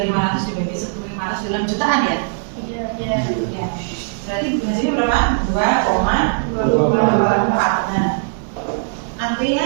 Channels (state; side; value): silent; left; digital silence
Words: dibagi 1.500 dalam jutaan ya? Iya. Ya. Berarti hasilnya berapa? 2,24. Nah,